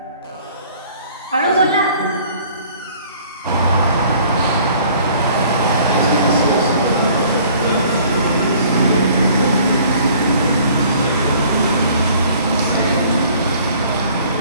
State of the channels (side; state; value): both; inverted; correlation -0.54